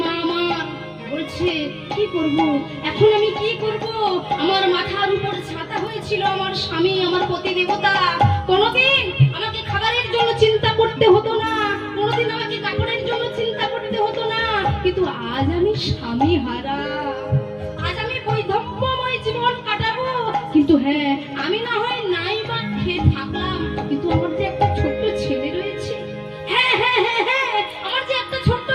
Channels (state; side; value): identical; both; correlation 1.00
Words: মা আমার বলছে কি করব এখন, আমি কি করব? আমার মাথার উপর ছাতা হয়েছিল আমার স্বামী, আমার পতি দেবতা। কোনোদিন আমাকে খাবারের জন্য চিন্তা করতে হতো না, কোনোদিন আমাকে কাপড়ের জন্য চিন্তা করতে হতো না, কিন্তু আজ আমি স্বামী হারা, আজ আমি বৈধব্যময় জীবন কাটাবো। কিন্তু হ্যাঁ, আমি না হয় নাই বা খেয়ে থাকলাম, কিন্তু আমার যে একটা ছোট্ট ছেলে রয়েছে, হ্যাঁ হ্যাঁ হ্যাঁ হ্যাঁ আমার যে একটা ছোট্ট